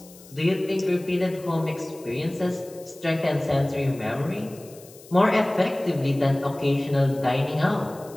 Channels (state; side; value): noise; left; hiss, 22 dB below the sound